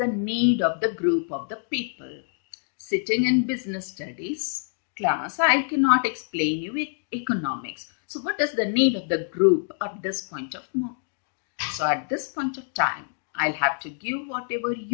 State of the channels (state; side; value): silent; right; digital silence